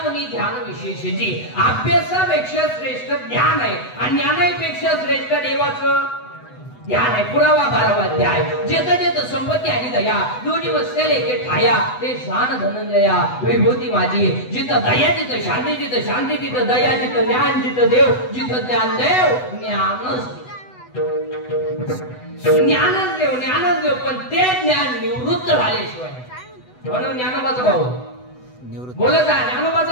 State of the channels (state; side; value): late; right; 8.0 ms